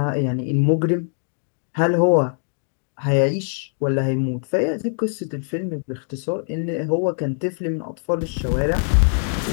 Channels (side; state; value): right; silent; digital silence